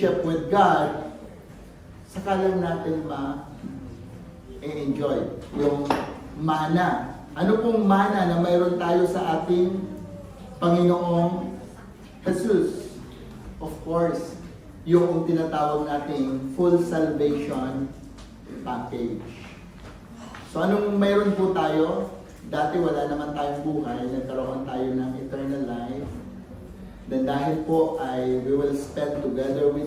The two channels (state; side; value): identical; both; correlation 1.00